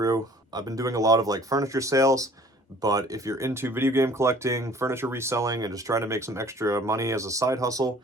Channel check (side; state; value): both; normal; correlation 0.52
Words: I've been doing a lot of like furniture sales, but if you're into video game collecting, furniture reselling, and just trying to make some extra money as a side hustle,